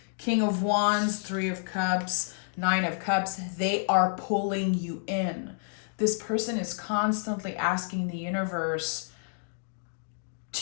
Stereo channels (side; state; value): right; silent; digital silence